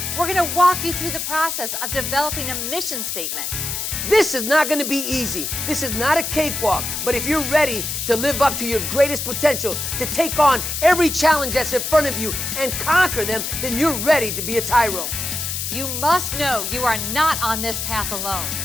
We're going to walk you through the process of developing a mission statement. This is not going to be easy. This is not a cakewalk. But if you're ready to live up to your greatest potential, to take on every challenge that's in front of you and conquer them, then you're ready to be a TYRO. You must know you are not on this path alone.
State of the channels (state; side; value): noise; left; hiss, 3 dB below the sound